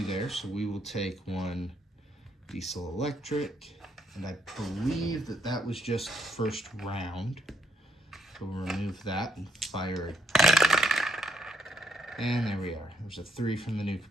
there. So we will take 1 diesel electric. And I believe that that was just first round. So we'll remove that and fire it. And there we are. There's a 3 from the nuke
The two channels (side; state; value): both; normal; correlation 0.74